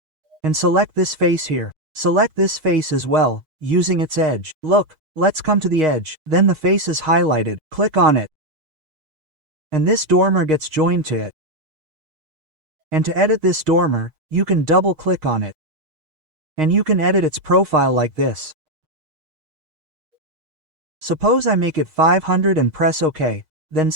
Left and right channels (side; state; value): left; late; 6.4 ms